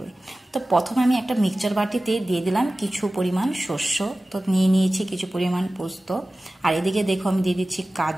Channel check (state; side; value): normal; both; correlation 0.96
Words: তো প্রথমে আমি একটা মিক্সচার বাটিতে দিয়ে দিলাম কিছু পরিমাণ শস্য, তো নিয়ে নিয়েছি কিছু পরিমাণ পোস্ত, আর এদিকে দেখো আমি দিয়ে দিচ্ছি